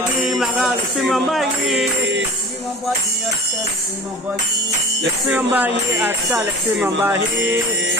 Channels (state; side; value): normal; both; correlation 0.39